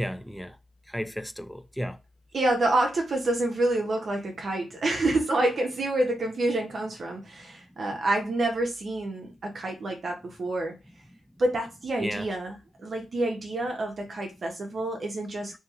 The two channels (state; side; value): normal; both; correlation 0.85